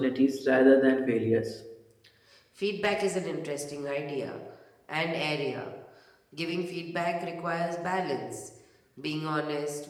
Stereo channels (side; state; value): both; identical; correlation 1.00